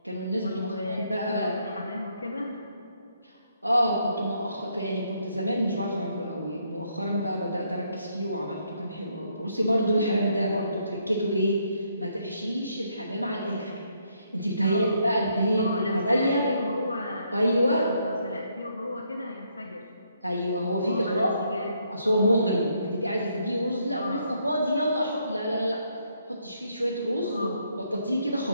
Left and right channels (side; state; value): both; inverted; correlation -0.73